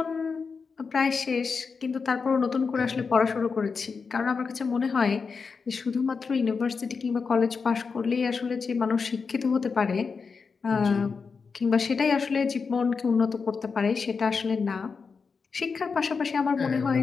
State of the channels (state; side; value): quieter; right; 5.2 dB